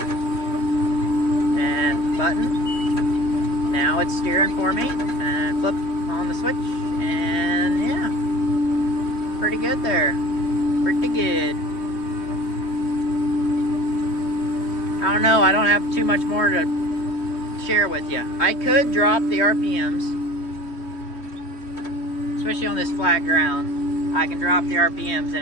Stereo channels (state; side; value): late; right; 3.1 ms